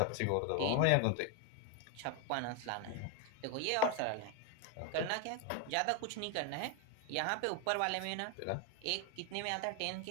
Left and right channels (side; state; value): both; different; correlation 0.01